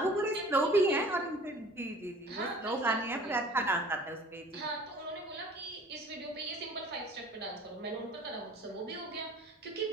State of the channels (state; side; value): normal; both; correlation 0.48